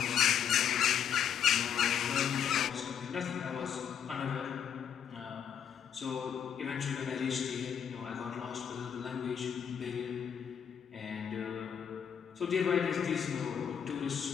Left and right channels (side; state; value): right; quieter; 8.4 dB